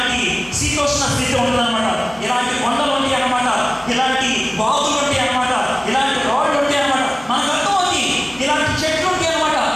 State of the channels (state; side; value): noise; right; hum, 26 dB below the sound